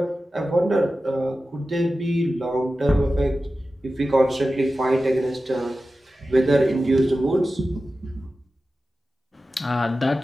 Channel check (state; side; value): normal; both; correlation 0.94